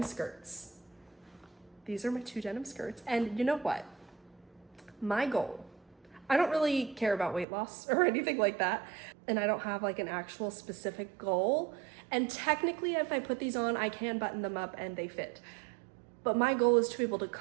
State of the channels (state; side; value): drops out; left; at 7.5 s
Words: skirts. These are my 2 denim skirts, and you know what? My goal, I don't really care about weight loss or anything like that, and I don't have like an actual specific goal, and technically if I put these on, I can button them up and they fit. But my goal is to be able to